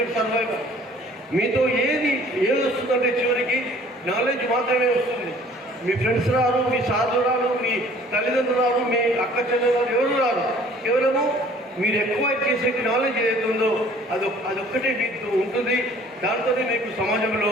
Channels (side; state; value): both; normal; correlation 0.53